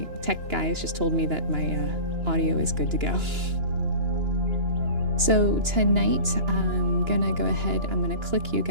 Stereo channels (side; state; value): left; late; 2.9 ms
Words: tech guys just told me that my audio is good to go. So tonight, I'm gonna go ahead, I'm gonna click you